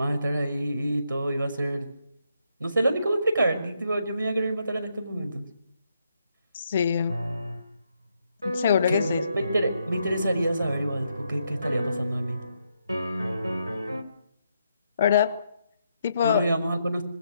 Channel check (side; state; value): both; inverted; correlation -0.79